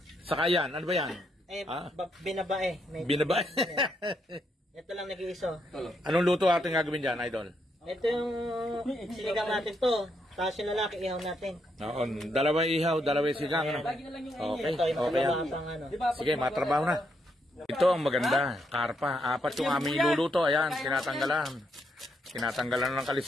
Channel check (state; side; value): normal; both; correlation 0.78